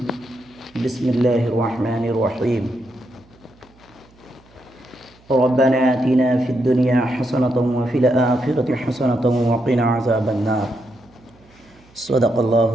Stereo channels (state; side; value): noise; right; hum, 29 dB below the sound